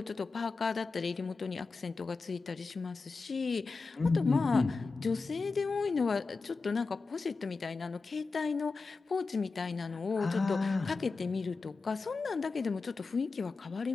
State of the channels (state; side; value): quieter; right; 4.2 dB